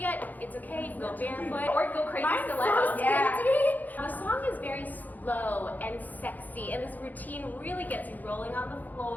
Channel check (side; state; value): right; late; 0.083 ms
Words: it's okay. You can go barefoot or go crazy stilettos. The song is very slow and sexy, and this routine really gets you rolling on the